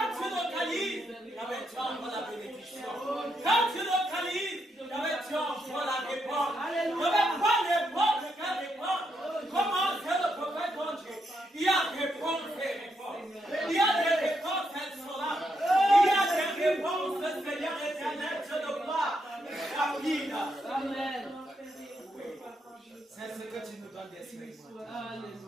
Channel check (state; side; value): normal; both; correlation 0.80